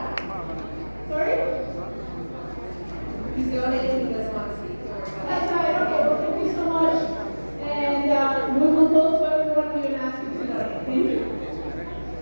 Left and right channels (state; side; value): inverted; both; correlation -1.00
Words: Sorry? He's donating, he doesn't want to speak. That's right. Okay, well, thank you so much. And we will go to everyone we will ask you to donate. Thank you.